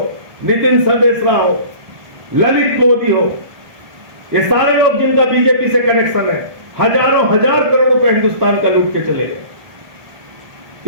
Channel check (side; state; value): left; late; 1.3 ms